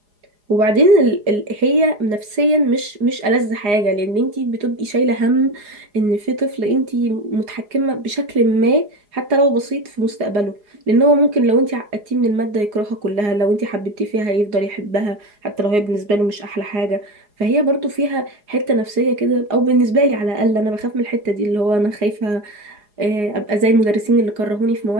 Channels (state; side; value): late; left; 4.8 ms